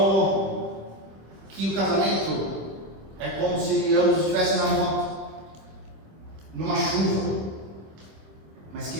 que o casamento é como se ambos estivessem na moto, numa chuva, mas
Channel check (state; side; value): late; left; 26 ms